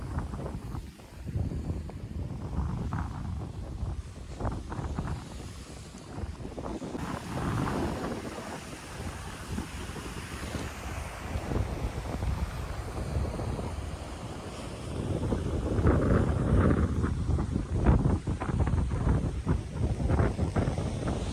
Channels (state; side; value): identical; both; correlation 1.00